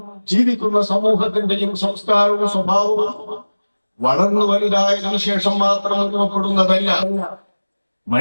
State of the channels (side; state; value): both; inverted; correlation -1.00